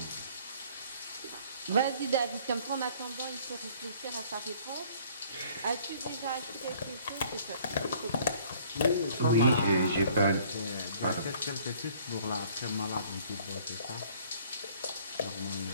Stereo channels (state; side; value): inverted; both; correlation -0.56